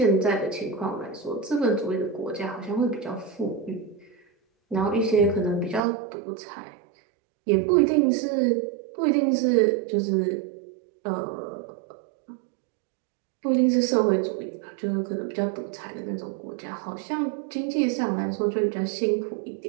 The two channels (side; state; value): left; drops out; at 5.8 s